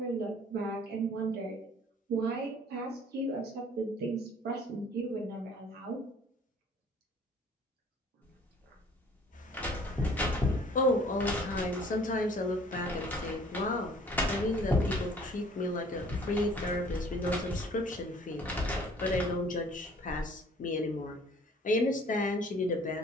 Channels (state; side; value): normal; both; correlation 0.54